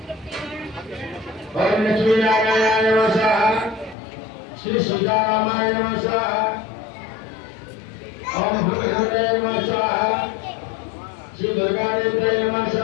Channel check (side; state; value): right; drops out; at 4.0 s